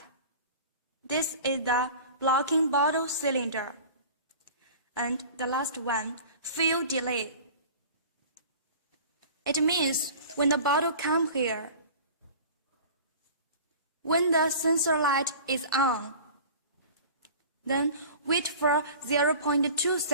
This is the blocking bottle cylinder. And the last one, fill delay. It means when the bottle comes here, when the sensor light is on, then wait for 0.2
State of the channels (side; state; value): both; inverted; correlation -0.40